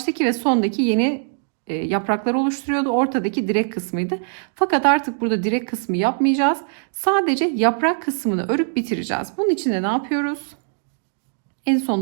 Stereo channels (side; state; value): left; silent; digital silence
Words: ve sondaki yeni yapraklar oluşturuyordu. Ortadaki direk kısmıydı. Fakat artık burada direk kısmı yapmayacağız. Sadece yaprak kısmını örüp bitireceğiz. Bunun için de ne yapıyoruz? En